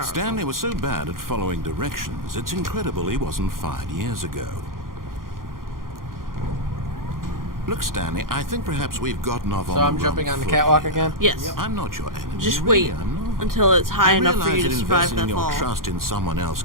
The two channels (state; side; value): late; left; 0.91 ms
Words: Stanley was so bad at following directions, it's incredible he wasn't fired years ago. Look, Stanley, I think perhaps we've gotten off on So the I'm wrong jumping on the foot catwalk here. again? Yes. I'm not your enemy. Just really, wait I'm not. until it's high I enough for realize you to that survive investing that your fall. trust in someone else